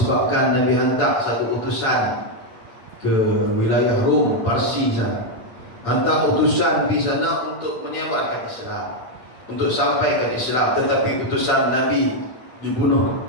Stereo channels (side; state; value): right; late; 9.0 ms